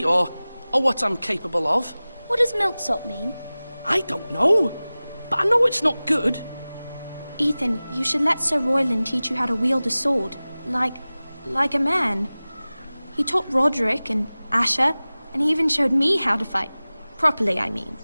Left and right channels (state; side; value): inverted; both; correlation -0.98